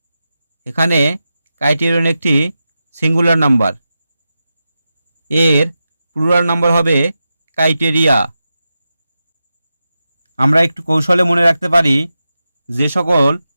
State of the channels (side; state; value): both; inverted; correlation -0.91